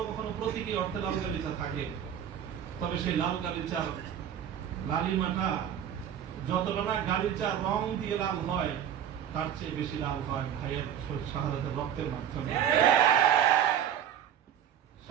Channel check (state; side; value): quieter; left; 9.5 dB